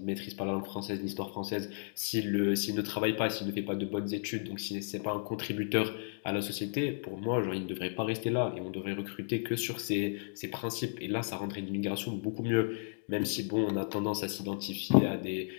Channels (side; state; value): right; silent; digital silence